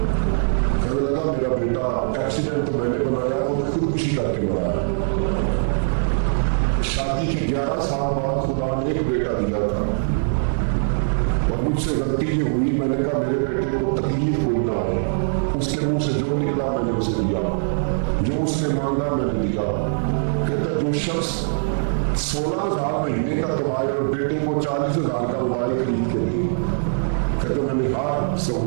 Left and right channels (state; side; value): silent; left; digital silence